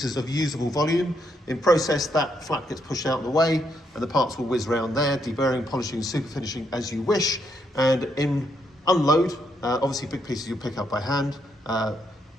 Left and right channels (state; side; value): normal; both; correlation 0.77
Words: of usable volume. In process, that flap gets pushed out of the way and the parts will whiz around there, deburring, polishing, superfinishing as you wish. And in unload, obviously big pieces you'll pick up by hand,